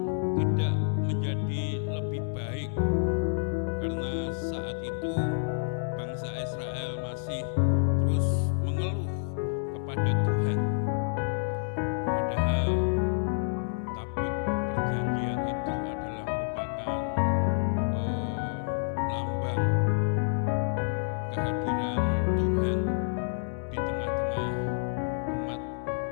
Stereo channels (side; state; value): right; silent; digital silence